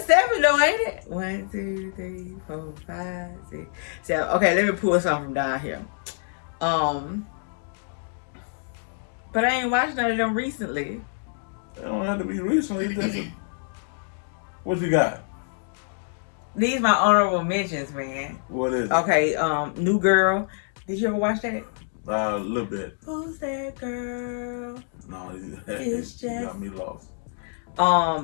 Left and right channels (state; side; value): silent; right; digital silence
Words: 7 though, ain't it? 1, 2, 3, 4, 5, 6, 7. Okay, let me pull something from down here. But I ain't watched none of them recently. It don't have to be recently. What you got? These my honorable mentions, man. What is it? Okay, New Girl. Did you ever watch that? A little bit. Who's that girl? No, It's just... you got me lost.